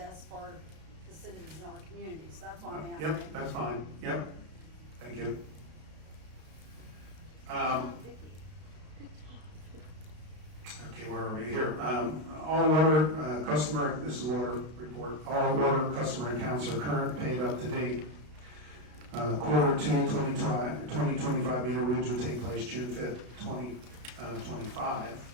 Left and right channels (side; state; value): left; late; 33 ms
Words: for the citizens in our communities. That's why I'm asking. Yep, that's fine, yep, thank you. Okay, where are we here? All water customer, this is water report, all water customer accounts are current, paid up to date. Quarter two, 2025 meter reads will take place June 5th, 2025.